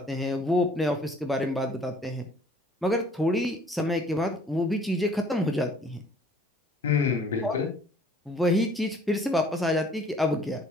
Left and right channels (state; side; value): normal; both; correlation 0.56